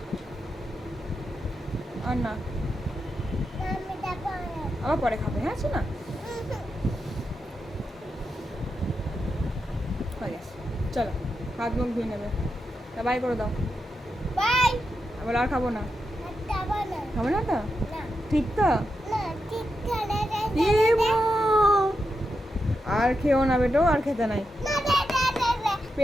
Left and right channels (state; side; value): normal; both; correlation 0.86